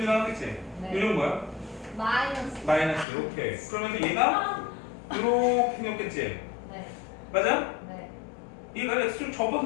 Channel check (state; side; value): drops out; right; at 3.1 s